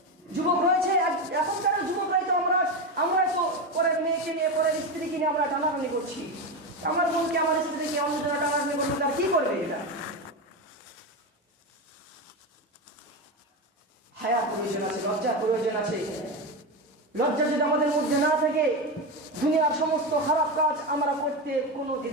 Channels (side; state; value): both; normal; correlation 0.16